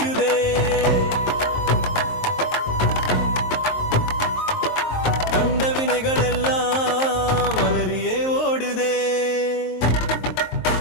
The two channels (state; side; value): late; right; 23 ms